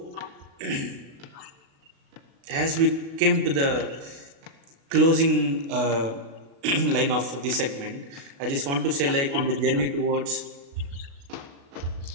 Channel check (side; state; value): left; late; 36 ms